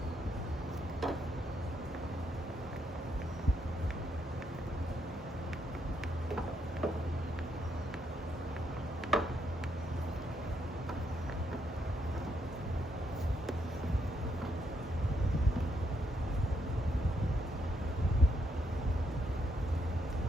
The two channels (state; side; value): normal; both; correlation 0.76